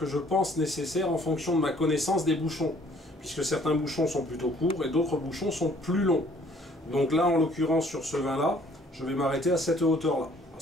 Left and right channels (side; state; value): both; normal; correlation 0.59